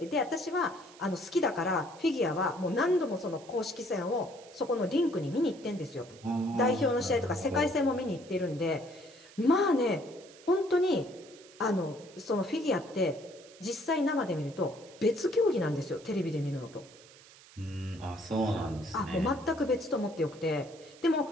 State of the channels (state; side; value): noise; right; hiss, 22 dB below the sound